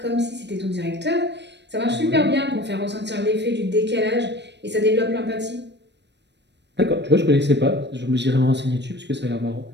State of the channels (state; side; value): late; left; 0.50 ms